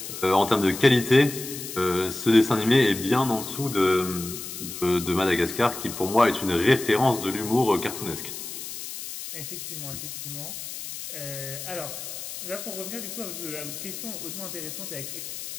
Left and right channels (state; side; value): noise; left; hiss, 9 dB below the sound